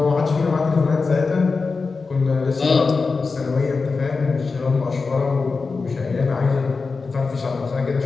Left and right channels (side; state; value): right; quieter; 4.4 dB